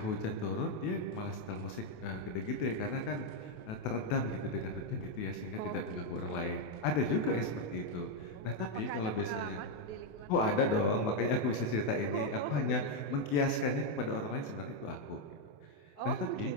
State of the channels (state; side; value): late; right; 28 ms